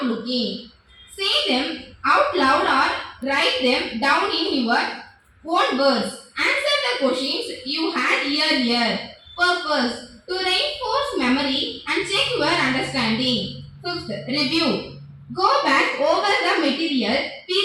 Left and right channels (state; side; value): identical; both; correlation 1.00